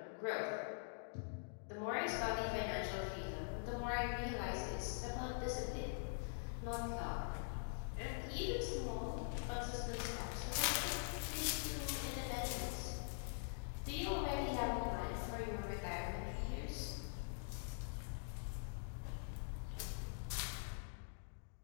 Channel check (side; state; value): right; silent; digital silence